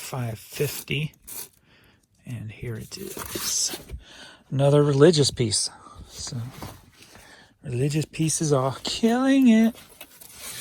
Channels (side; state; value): both; identical; correlation 1.00